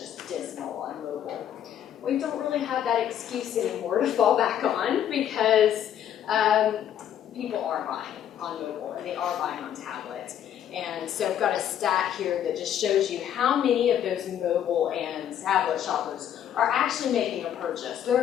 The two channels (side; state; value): right; quieter; 10.0 dB